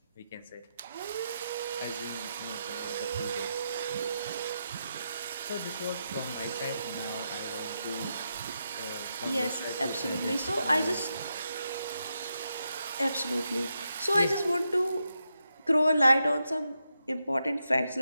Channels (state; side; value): inverted; both; correlation -0.85